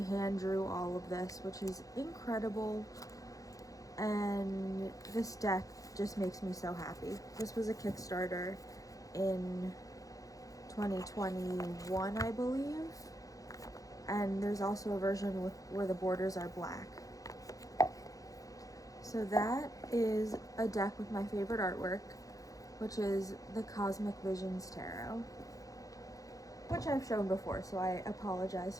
drew all of this, which is incredible. And this deck just makes me so happy. This was a Kickstarter in 2021, I believe. And there's also a version where the borders are black. So that is a deck with my favorite artwork, which is the Cosmic Visions Tarot, which I've shown before, so I apologize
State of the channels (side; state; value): right; late; 0.17 ms